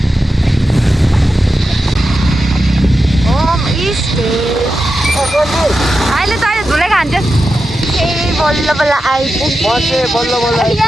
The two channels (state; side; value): normal; both; correlation 0.90